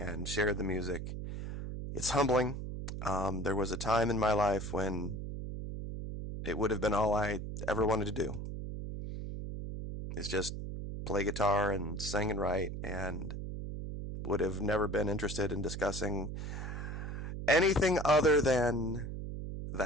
shared the music. It's humbling. There was a time in my life when it would have been all I ever wanted to do is just play guitar and sing and write, and would have never been interested in discussing anything other than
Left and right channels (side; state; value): right; noise; hum, 6 dB below the sound